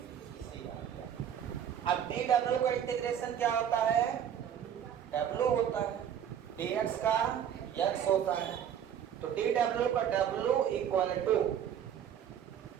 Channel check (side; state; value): left; quieter; 9.2 dB